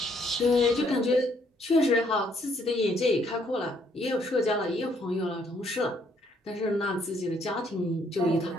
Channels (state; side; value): normal; both; correlation 0.68